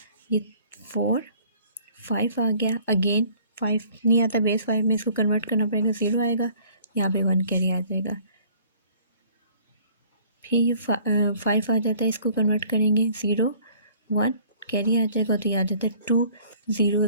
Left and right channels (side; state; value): both; inverted; correlation -0.54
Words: ये 4 5 आ गया। अगेन 5 नहीं आता बेस 5 में, इसको कन्वर्ट करना पड़ेगा, 0 आएगा, यहाँ पे 1 कैरी आ जाएगा। फिर ये 5 आ जाता है, इसको कन्वर्ट करेंगे, 0 1 कैरी आ जाएगा, तो ये आ जाता है 2 0